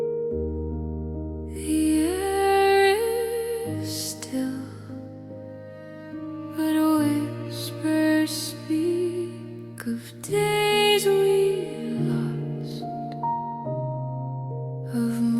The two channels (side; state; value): both; identical; correlation 1.00